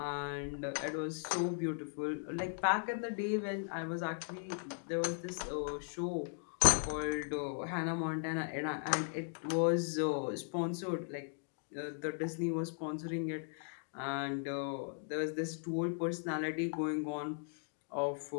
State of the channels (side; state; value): right; silent; digital silence